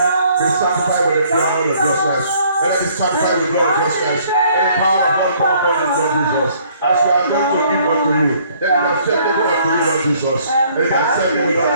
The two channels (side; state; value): both; inverted; correlation -0.61